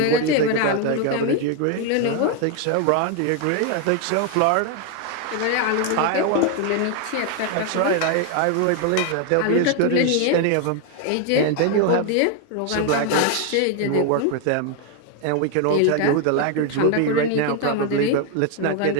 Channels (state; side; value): different; both; correlation 0.01